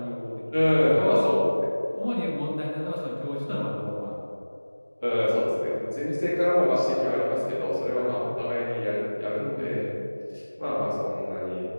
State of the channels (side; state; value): both; inverted; correlation -1.00